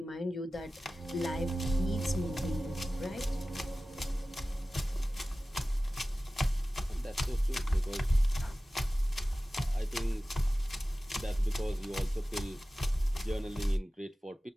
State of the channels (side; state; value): both; normal; correlation 0.96